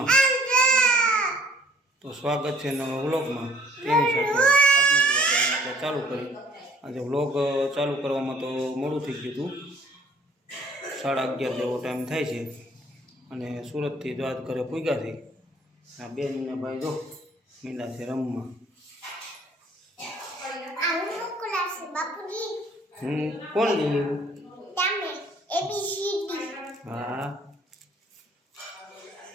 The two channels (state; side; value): normal; both; correlation 0.56